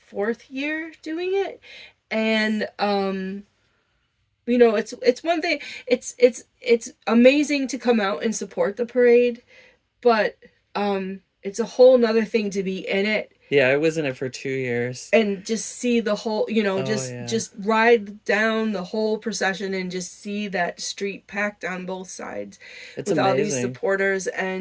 fourth year doing it, and it's one thing. It's amazing to come out and support the parade, but it's a whole nother thing to be in it Yeah, I was in it for 2 years. and just see the whole, Oh just yeah, just ride down the whole procession and just see that street packed on both sides it's with all these amazing. supporters.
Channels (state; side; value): identical; both; correlation 1.00